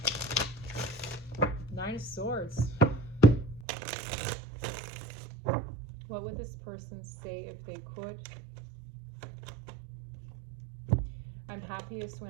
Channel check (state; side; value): drops out; left; at 3.7 s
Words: Nine of Swords. What would this person say if they could? I'm happiest